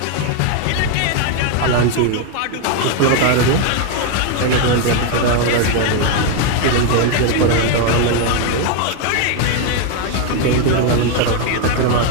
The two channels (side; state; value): both; different; correlation 0.01